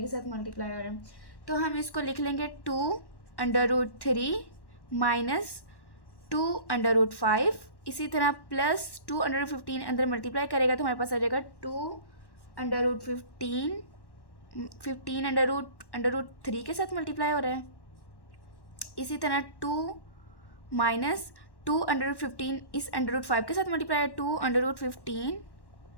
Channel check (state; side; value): late; right; 1.1 ms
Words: के साथ मल्टीप्लाई हो रहा है। तो हम इसको लिख लेंगे 2√3 माइनस 2√5। इसी तरह प्लस 2√15 अंदर मल्टीप्लाई करेगा तो हमारे पास आ जाएगा 2√15 √3 के साथ मल्टीप्लाई हो रहा है। इसी तरह 2 माइनस 2√15 इस √5 के साथ मल्टीप्लाई है 2√15